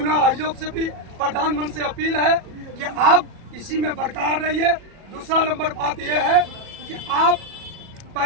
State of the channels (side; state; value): left; late; 37 ms